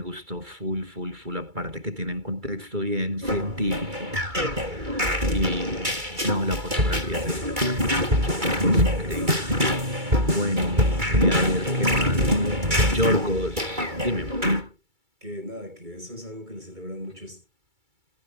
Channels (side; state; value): left; late; 2.3 ms